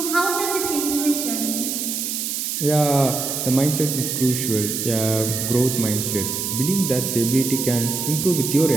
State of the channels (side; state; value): right; noise; hiss, 2 dB below the sound